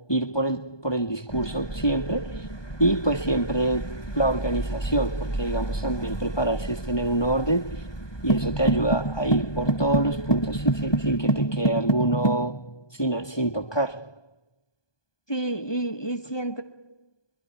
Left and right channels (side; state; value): right; late; 1.2 ms